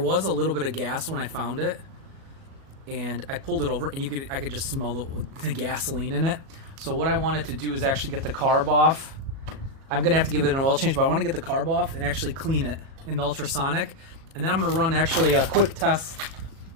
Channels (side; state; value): left; late; 37 ms